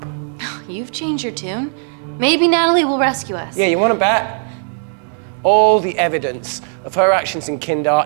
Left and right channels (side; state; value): left; silent; 68 dB below the other